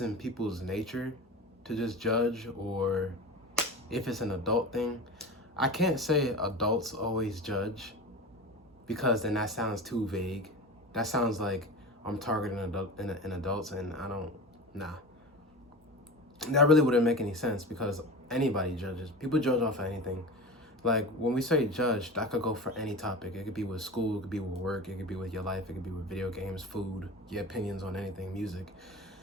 people's nature to just judge or if it's an adult thing. I can't say adults always judge because then that sounds too vague. That sounds like I'm targeting adults, and I don't, nah. That really wouldn't make any sense because anybody judges. People judge off of anything. Like when we say judge, that could go for any topic. It could be with school, it could be with work, it could be with your life, it could be with video games, food, your opinions on anything, music,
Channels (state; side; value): normal; both; correlation 0.30